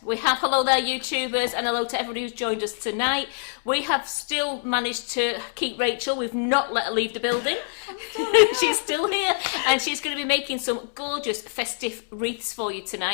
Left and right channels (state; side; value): silent; right; 60 dB below the other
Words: We have hello there, YouTubers, and hello to everybody who's joined us tonight. We have still managed to keep Rachel. We've not let her leave the building. She's still here, and she's going to be making some gorgeous festive wreaths for you